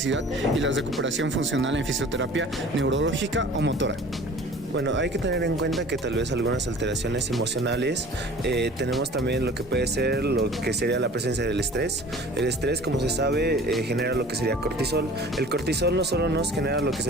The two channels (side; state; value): both; normal; correlation 0.45